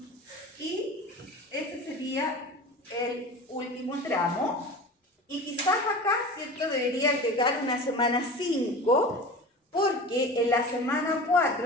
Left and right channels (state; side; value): normal; both; correlation 0.35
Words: y ese sería el último tramo. Y quizás acá, ¿cierto?, debería llegar una semana 5, porque en la semana